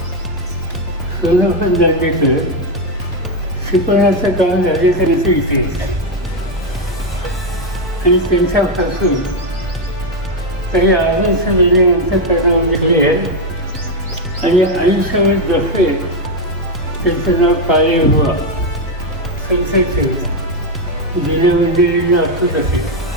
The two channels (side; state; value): both; normal; correlation 0.05